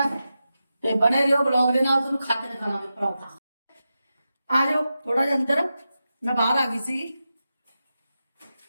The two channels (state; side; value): inverted; both; correlation -0.91